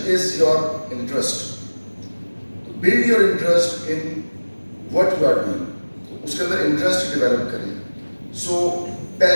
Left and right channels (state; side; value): inverted; both; correlation -1.00